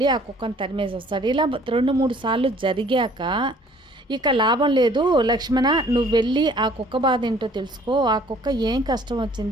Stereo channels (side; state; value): both; normal; correlation 0.56